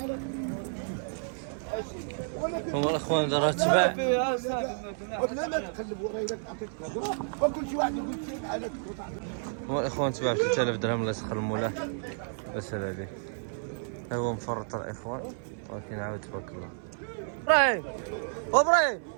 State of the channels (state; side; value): silent; left; 57 dB below the other